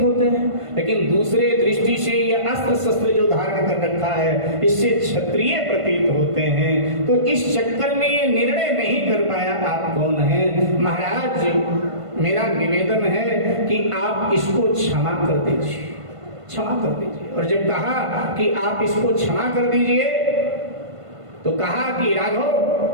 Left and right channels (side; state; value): left; late; 1.5 ms